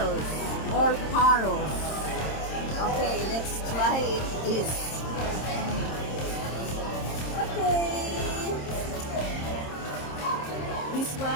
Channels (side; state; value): right; late; 26 ms